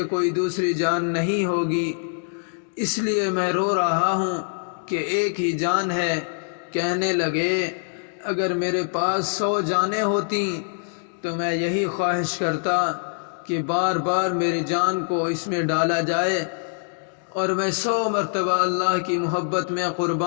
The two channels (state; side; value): silent; right; digital silence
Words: کوئی دوسری جان نہیں ہوگی، اس لیے میں رو رہا ہوں کہ ایک ہی جان ہے۔ کہنے لگے اگر میرے پاس 100 جانیں ہوتی تو میں یہی خواہش کرتا کہ بار بار میری جان کو اس میں ڈالا جائے اور میں 100 مرتبہ اللہ کی محبت میں